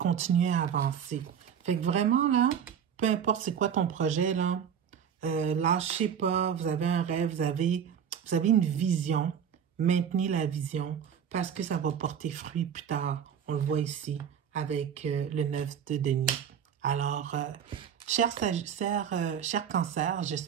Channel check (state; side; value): quieter; left; 8.1 dB